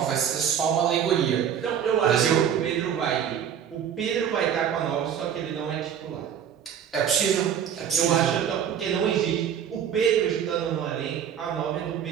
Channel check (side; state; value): left; quieter; 8.8 dB